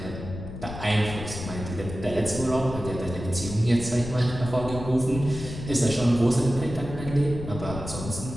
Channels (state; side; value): noise; left; rumble, 9 dB below the sound